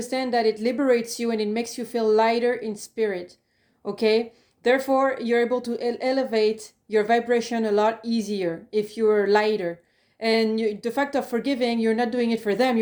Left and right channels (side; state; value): both; identical; correlation 1.00